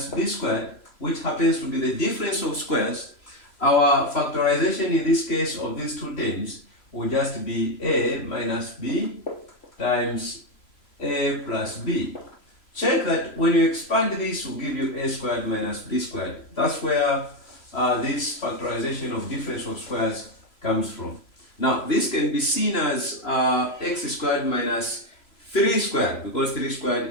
b squared, which happens to be the difference of squares, our factorization in this case of these two terms will just be a minus b times a plus b. Check that when you expand this, will give you a squared minus b squared. That's where this factorization of difference of squares comes from. Now, this can be seen as x squared minus 3 squared, because 3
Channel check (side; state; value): right; late; 3.0 ms